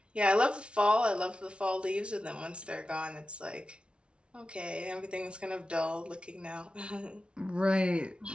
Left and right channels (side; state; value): left; late; 0.058 ms